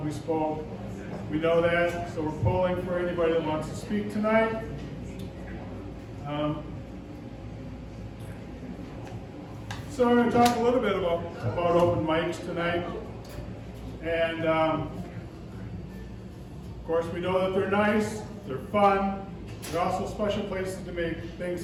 we spoke. We know that, so we're polling for anybody that wants to speak tonight. So we're going to talk a little bit about open mics tonight. And of course we know that they're nice, they're fun, they're also special places to make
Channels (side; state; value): both; identical; correlation 1.00